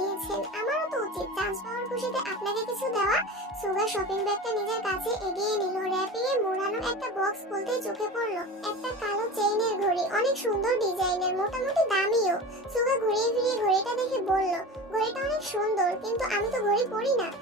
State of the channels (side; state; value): both; normal; correlation 0.31